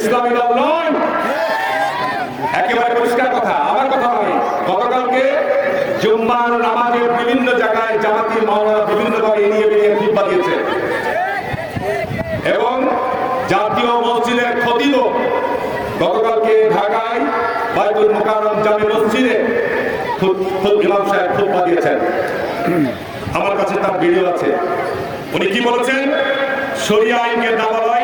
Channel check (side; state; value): both; identical; correlation 1.00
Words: ইসলামী দল নয়, একেবারে পরিষ্কার কথা, আমার কথা নয়। গতকালকে জুম্মার নামাজের বিভিন্ন জায়গায় জামাতি মাওলানা বিভিন্ন ভাবে এড়িয়ে বেরিয়ে খুতবা দিয়েছে এবং জাতীয় মসজিদের খতিব গতকালকে ঢাকায় বাইতুল মুকাররম জামে মসজিদে ইমাম সাহেব খুতবা দিয়েছেন। আমার কাছে তার ভিডিও আছে। উনি কি বলেছেন? শরিয়া আইনকে